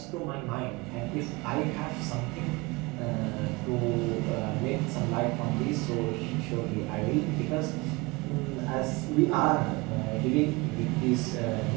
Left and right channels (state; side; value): quieter; left; 24.4 dB